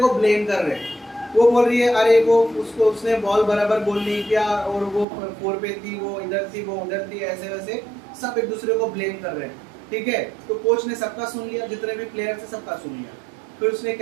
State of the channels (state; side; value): drops out; left; at 5.1 s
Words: ब्लेम कर रहे हैं। वो बोल रही है अरे वो उसने बॉल बराबर गोल नहीं किया और वो 4 पे थी, वो इधर थी, वो उधर थी, ऐसे वैसे सब एक दूसरे को ब्लेम कर रहे हैं, ठीक है। तो कोच ने सबका सुन लिया, जितने भी प्लेयर थे सबका सुन लिया। फिर उसने